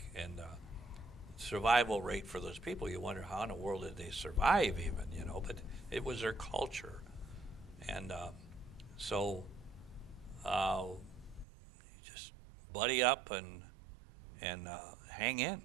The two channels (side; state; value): left; drops out; at 11.5 s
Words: and survival rate for those people. You wonder how in the world did they survive, even, But it was their culture, and so just buddy up and hang in,